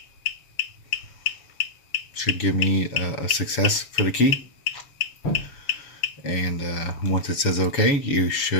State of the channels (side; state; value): right; late; 7.0 ms